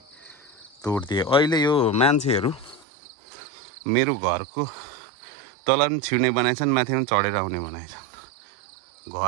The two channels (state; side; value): drops out; left; at 2.9 s